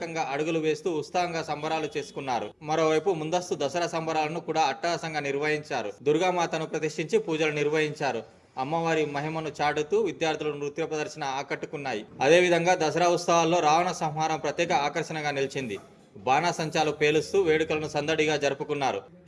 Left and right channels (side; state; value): both; identical; correlation 1.00